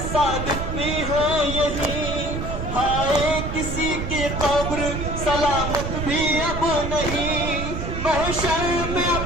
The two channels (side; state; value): right; noise; rumble, 4 dB below the sound